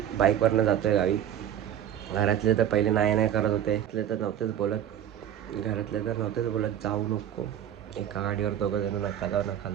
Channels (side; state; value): left; quieter; 10.4 dB